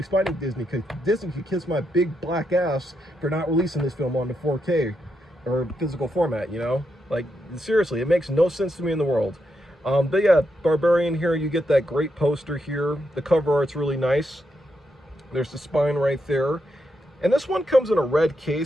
spiting Disney, because Disney could kiss my big black ass for not releasing this film on the 4K or physical format, Like, seriously, it makes no sense to me in the world. But yeah, Barbarian here, you get that great poster here. The cover art's really nice. There's the spine right there. And this one comes in a red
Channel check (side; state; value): both; normal; correlation 0.82